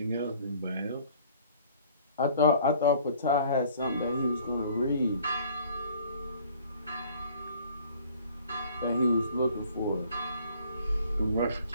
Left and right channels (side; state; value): both; inverted; correlation -0.55